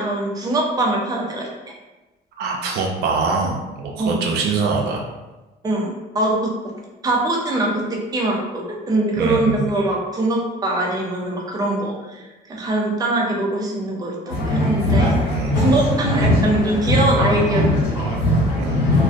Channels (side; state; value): both; normal; correlation 0.43